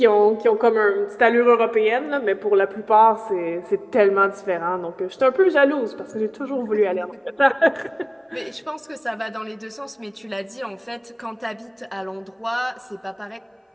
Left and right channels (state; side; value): identical; both; correlation 1.00